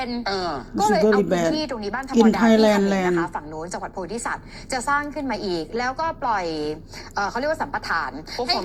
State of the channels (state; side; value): identical; both; correlation 1.00